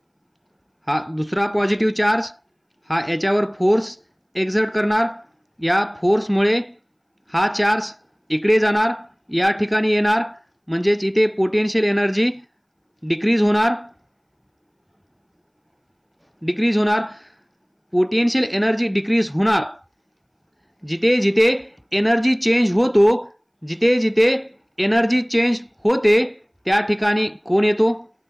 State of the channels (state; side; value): identical; both; correlation 1.00